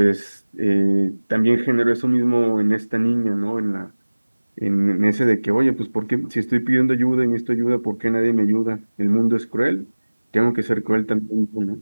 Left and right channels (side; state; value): both; inverted; correlation -1.00